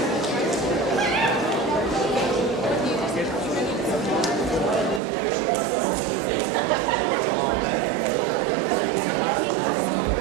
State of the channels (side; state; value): left; drops out; at 5.0 s